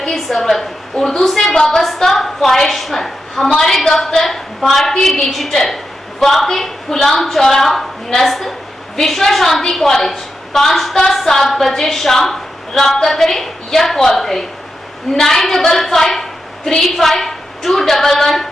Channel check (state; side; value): normal; both; correlation 0.87